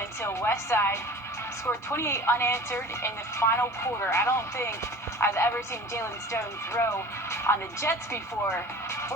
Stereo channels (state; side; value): normal; both; correlation 0.40